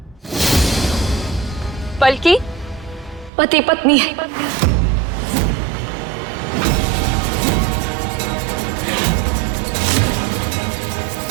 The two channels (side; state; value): left; drops out; at 3.3 s